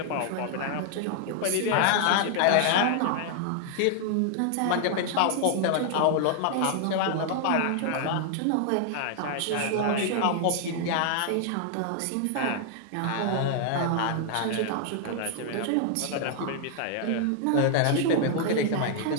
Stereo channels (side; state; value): both; different; correlation 0.00